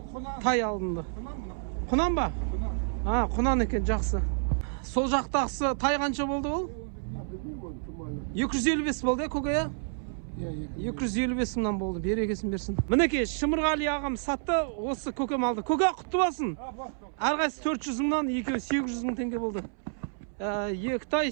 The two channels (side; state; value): left; silent; 58 dB below the other